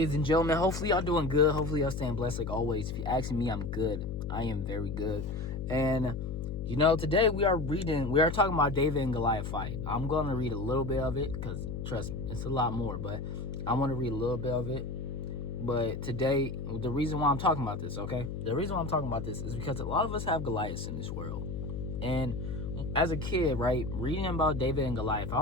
and gentlemen? Hopefully y'all doing good. Hopefully y'all staying blessed like always. If you're asking me, I'm good. I am very good. And today we are talking about David and Goliath fight. I'm going to read a little bit of it because, trust me, it's a lot more, but I want to read a little bit of it. But today, the reason why I'm talking about this, okay? The reason why I'm talking about this is because a lot of us have Goliaths in this world. And as a kid, right, reading about David and Goliath, I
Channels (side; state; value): left; noise; hum, 5 dB below the sound